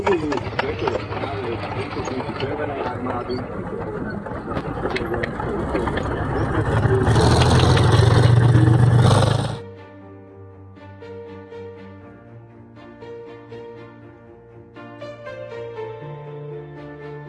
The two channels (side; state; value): both; identical; correlation 1.00